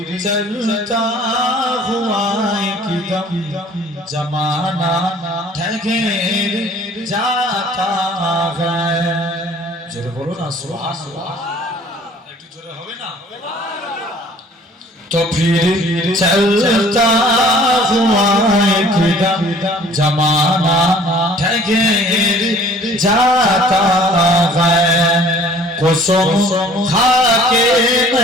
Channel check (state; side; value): normal; both; correlation 0.53